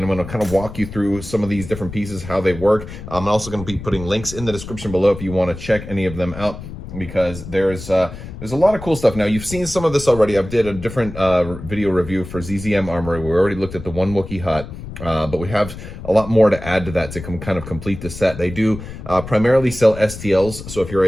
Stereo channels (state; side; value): noise; left; rumble, 11 dB below the sound